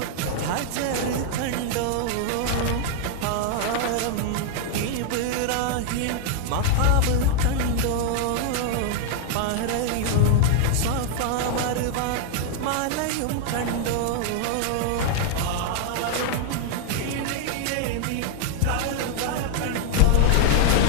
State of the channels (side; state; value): both; different; correlation 0.00